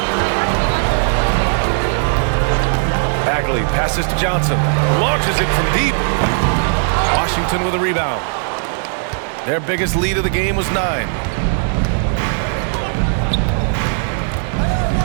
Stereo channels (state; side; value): silent; left; 67 dB below the other